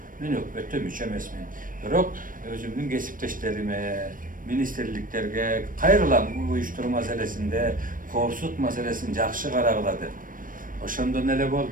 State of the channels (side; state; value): left; late; 0.40 ms